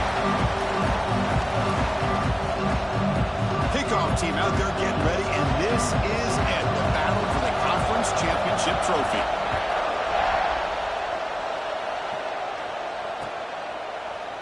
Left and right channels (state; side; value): identical; both; correlation 1.00